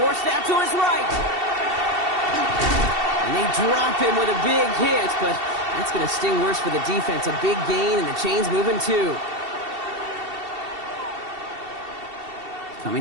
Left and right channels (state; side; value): late; left; 2.7 ms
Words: out to his right. And they drop him with a big hit, but that's going to sting worse for the defense. A big gain, and the chain's moving too.